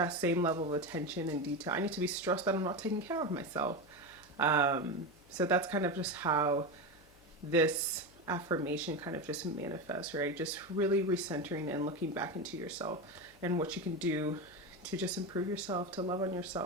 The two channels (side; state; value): left; noise; hum, 27 dB below the sound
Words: same level of attention and detail. I need to be stressed that I'm not taking care of myself. So that's kind of just how this affirmation kind of just manifests, right? Just really recentering and looking back into yourself and what you can do to just improve yourself, to love on